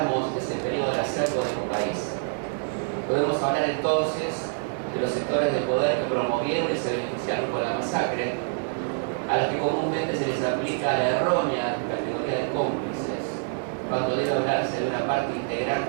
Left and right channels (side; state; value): left; silent; digital silence